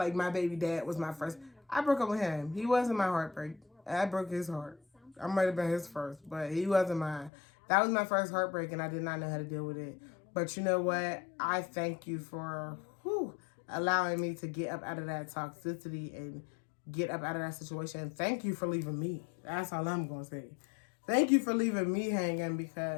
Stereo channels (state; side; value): drops out; right; at 7.3 s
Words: my baby dad was my first. I broke up with him. He wasn't my heartbreak. I broke his heart. I might have been his first, but he wasn't mine. That was my first heartbreak, and I did not know how to deal with it. But you know what? I thank you for allowing me to get up out of that toxicity and get up out of that situation. Thank you for leaving me. That's all I'm going to say. Thank you for leaving me hanging,